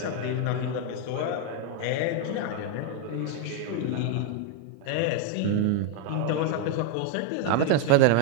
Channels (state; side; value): different; both; correlation 0.00